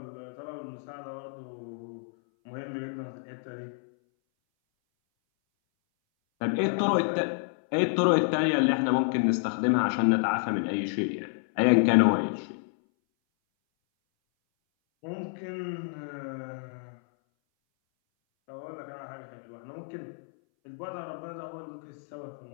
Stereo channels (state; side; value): silent; right; 58 dB below the other